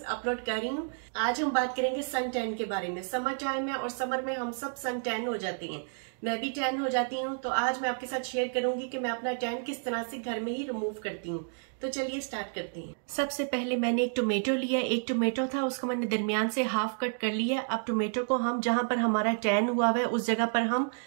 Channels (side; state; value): left; silent; 57 dB below the other